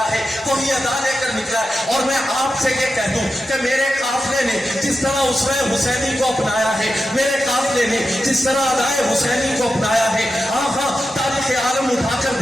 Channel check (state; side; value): normal; both; correlation 0.90